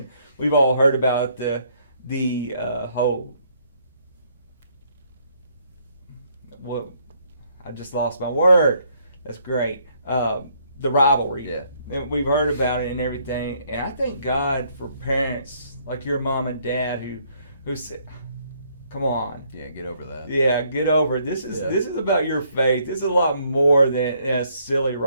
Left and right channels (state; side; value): inverted; both; correlation -0.68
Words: we've all heard about the whole, well, I just lost my word. That's great. The rivalry. Yeah. And we've heard about it and everything. And I thank God for parents like your mom and dad who said, come on. Yeah, get over that. Yeah, get over it. This is about your faith. This is a lot more than a silly